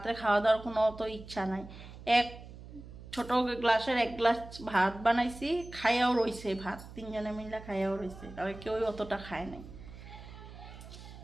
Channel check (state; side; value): noise; right; hum, 15 dB below the sound